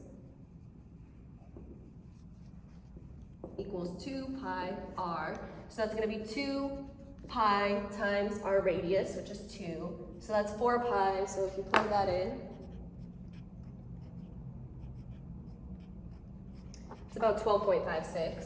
equals 2 pi r. So that's going to be 2 pi times our radius, which is 2. So that's 4 pi. So if you plug that in, It's about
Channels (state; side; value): identical; both; correlation 1.00